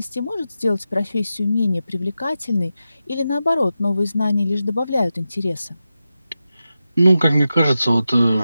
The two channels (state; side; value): inverted; both; correlation -0.91